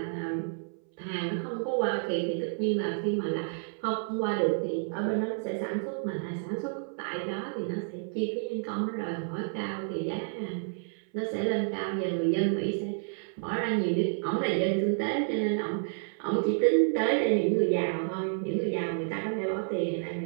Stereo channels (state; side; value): silent; left; 58 dB below the other